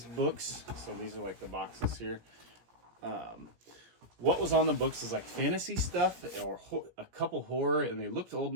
books, so these are like the boxes here. What was on the books is like fantasy stuff or a couple horror, and they looked old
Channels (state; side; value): late; left; 17 ms